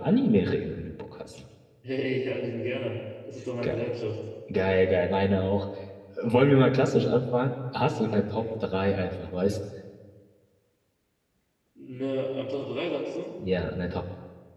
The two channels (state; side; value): identical; both; correlation 1.00